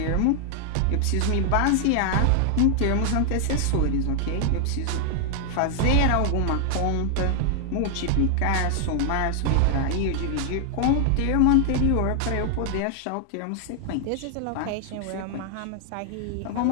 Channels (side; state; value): both; different; correlation 0.00